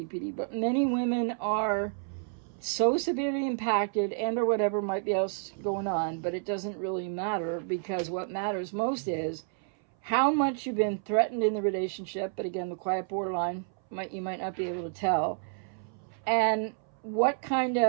but many women are so severely impacted and or whatever might be else going on, but it doesn't really matter, because what matters most is how much you've been threatened in the relationship. But again, the quiet borderline, you might not be able to tell. And what kind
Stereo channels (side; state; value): left; silent; 58 dB below the other